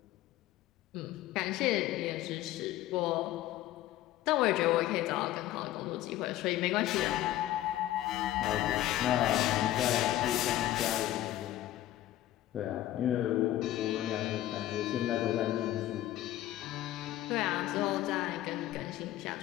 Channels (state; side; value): quieter; right; 14.2 dB